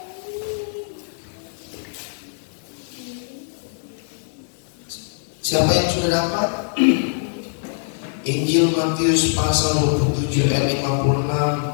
Siapa yang sudah dapat? Injil Matius pasal 27 ayat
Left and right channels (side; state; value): right; silent; 64 dB below the other